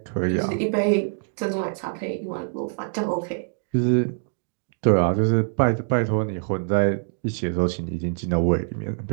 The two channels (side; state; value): left; silent; digital silence